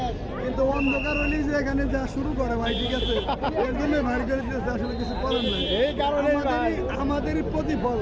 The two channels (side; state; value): both; identical; correlation 1.00